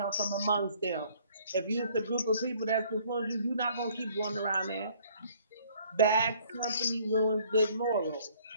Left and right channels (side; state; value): both; inverted; correlation -0.59